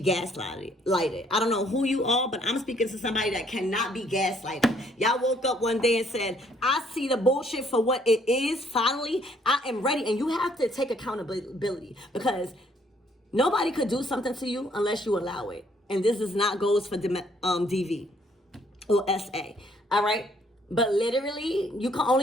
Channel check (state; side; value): normal; both; correlation 0.66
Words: gaslighted. I don't know who you are, but I'm speaking to somebody that cannot be gaslighted. Y'all woke up one day and said, I see the bullshit for what it is. Finally, I am ready. And you have to take accountability because nobody could do something to you unless you allow it. And this is not goes for DV or SA. All right. But literally, you can